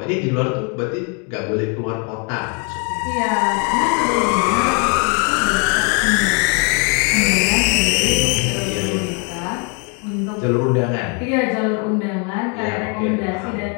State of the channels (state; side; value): quieter; right; 36.4 dB